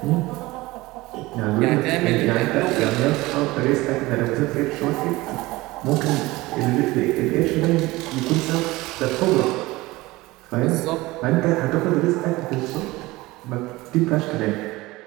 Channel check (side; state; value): left; quieter; 20.2 dB